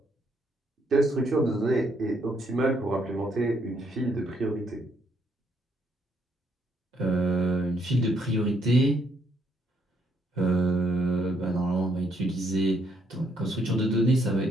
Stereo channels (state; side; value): normal; both; correlation 0.72